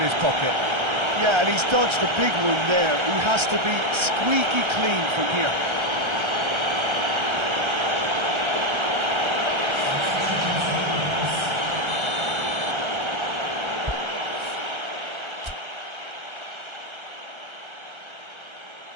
pocket. Yeah, and he's dodged a big one there. He has to be squeaky clean from here.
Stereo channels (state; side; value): late; left; 1.3 ms